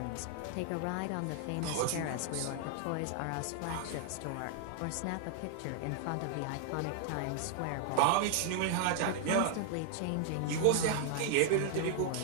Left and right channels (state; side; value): different; both; correlation 0.00